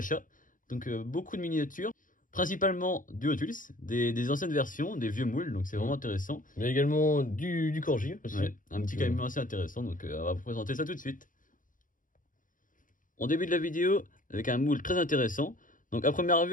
Donc beaucoup de miniatures, principalement du Hot Wheels, des anciennes versions, des vieux moules, donc c'est vraiment intéressant. Mais également du Corgi aussi. Ouais, un petit camion assez intéressant, donc on va vous présenter ça tout de suite. On débute la vidéo avec un moule très intéressant. Donc à première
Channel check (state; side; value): late; right; 0.38 ms